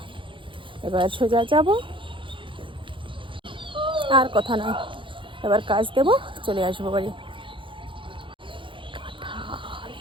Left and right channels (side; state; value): left; late; 0.25 ms